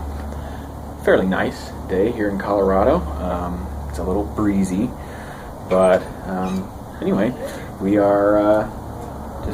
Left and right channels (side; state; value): both; identical; correlation 1.00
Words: fairly nice day here in Colorado. It's a little breezy, but anyway, we are